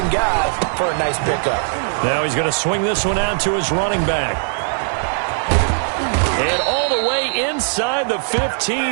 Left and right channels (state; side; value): silent; left; 67 dB below the other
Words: guy for a nice pickup. Now he's going to swing this one out to his running back. And all the way inside the